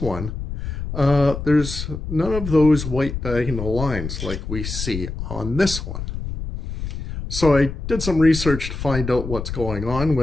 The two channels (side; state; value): left; noise; rumble, 6 dB below the sound